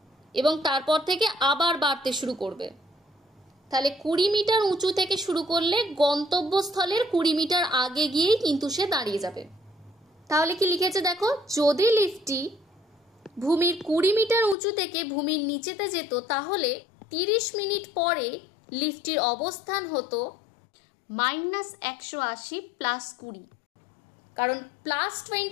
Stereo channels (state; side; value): drops out; right; at 14.6 s